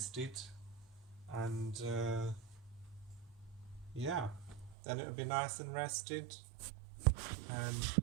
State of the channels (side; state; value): left; drops out; at 4.8 s